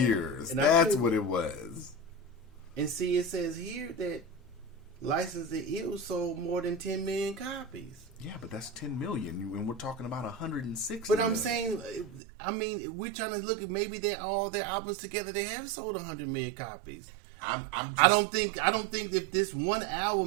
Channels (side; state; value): left; drops out; at 12.2 s